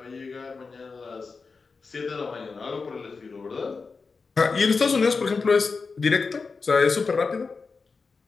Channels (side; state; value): right; quieter; 4.6 dB